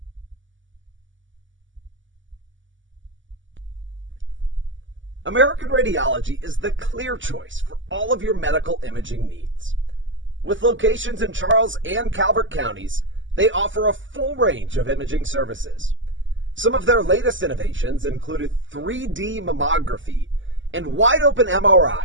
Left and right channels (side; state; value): left; late; 0.55 ms